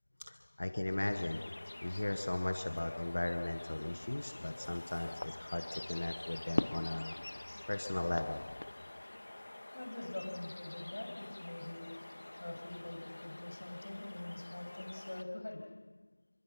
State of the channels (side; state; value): both; inverted; correlation -1.00